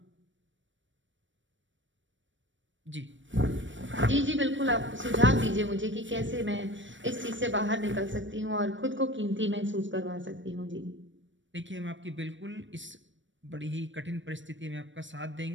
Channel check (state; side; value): late; left; 0.55 ms